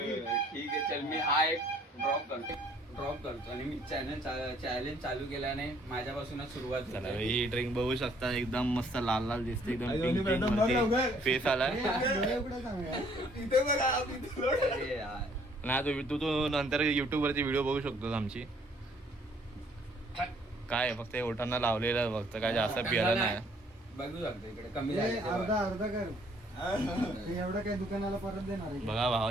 ठीक आहे चल मी हा एक ड्रॉप करतो आणि मी चॅलेंज चालू केल्याने माझ्यापासूनच सुरुवात चला झाली. ही ड्रिंक बघू शकता एकदम मस्त लाल लाल दिसते एकदम आणि पिंक दोन्ही पिंक बघ लवकर. मध्ये फेस आलाय. डोळे उघडा सांगा. इथे बघा, इथे बघ. अरे यार. नाही तू नंतर युट्यूब वरती व्हिडिओ बघू शकतोस आमची. काय आहे, फक्त ओठांना लावलेलं फक्त काय जास्त पियाला नाही. बघू शकतो इकडे कमी ए, झाले अर्धा अर्धा कर. मी एवढं काय दुकानाला परत देणार आहे? बघा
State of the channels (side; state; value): both; normal; correlation 0.62